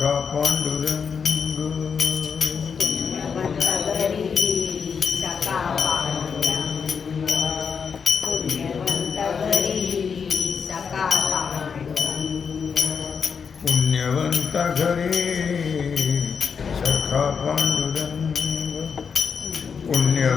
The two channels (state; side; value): quieter; right; 6.2 dB